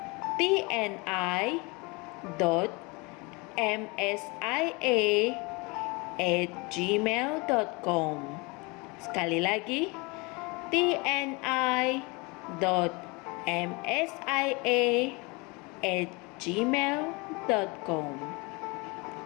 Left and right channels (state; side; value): quieter; right; 27.5 dB